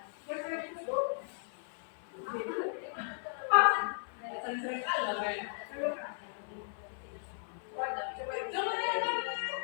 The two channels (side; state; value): right; silent; 54 dB below the other